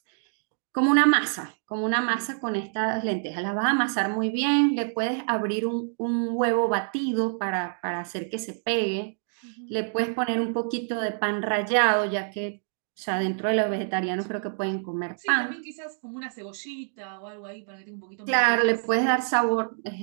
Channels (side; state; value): left; silent; digital silence